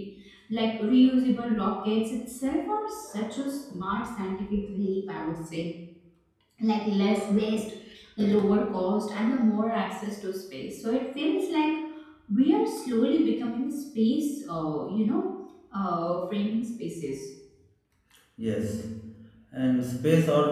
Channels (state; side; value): identical; both; correlation 1.00